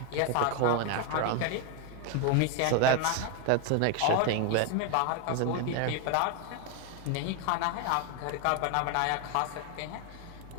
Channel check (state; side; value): different; both; correlation 0.01